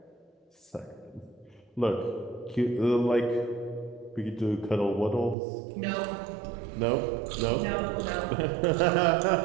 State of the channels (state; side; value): drops out; left; at 5.4 s